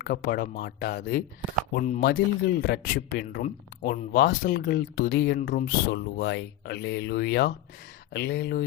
மாட்டாது. உன் மதில்கள் இரட்சிப்பென்றும் உன் வாசல்கள் துதி என்றும் சொல்லுவாய். அல்லேலூயா,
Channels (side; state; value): right; quieter; 12.7 dB